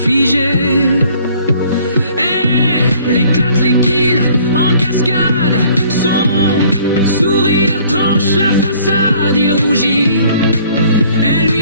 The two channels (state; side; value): inverted; both; correlation -0.57